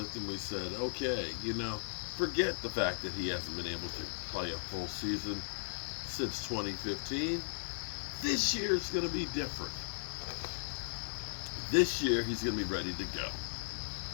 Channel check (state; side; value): silent; right; 53 dB below the other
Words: and we said, okay, forget the fact that he hasn't been able to play a full season since 2015. This year is going to be different. This year he's going to be ready to go.